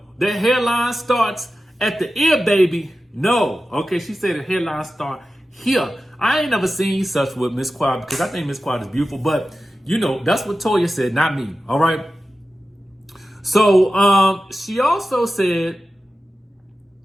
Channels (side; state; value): both; normal; correlation 0.94